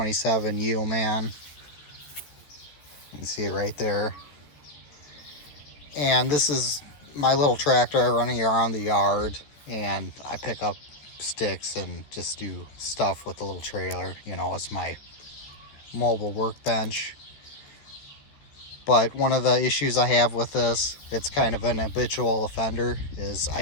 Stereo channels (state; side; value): late; right; 14 ms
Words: Yeoman. You can see it right there. And this is my little tractor running around the yard, and I pick up sticks and just do stuff with the little trailer. You know, it's my mobile workbench. But one of the issues I have with this, it's kind of an habitual offender, is